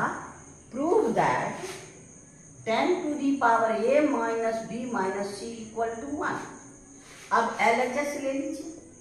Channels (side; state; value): both; identical; correlation 1.00